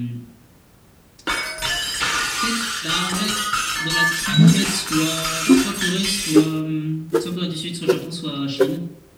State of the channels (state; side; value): identical; both; correlation 1.00